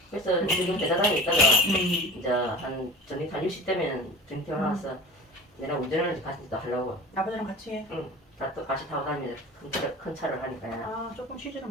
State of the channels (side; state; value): both; normal; correlation 0.36